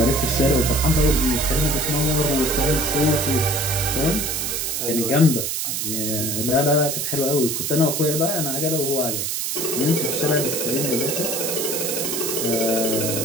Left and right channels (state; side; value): noise; right; hiss, 1 dB below the sound